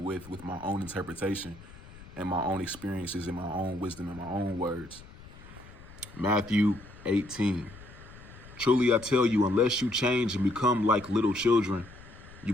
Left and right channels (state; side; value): noise; left; rumble, 19 dB below the sound